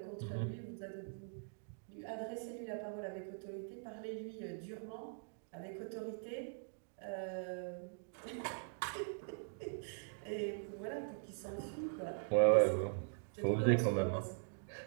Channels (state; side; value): silent; left; digital silence